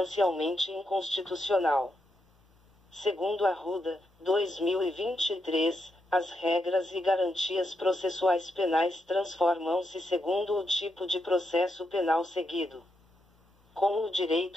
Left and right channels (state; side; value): normal; both; correlation 0.83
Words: inconstitucional. Segundo Arruda, 2023, as regras e garantias processuais penais transformam-se segundo o tipo de processo penal seguido. Como o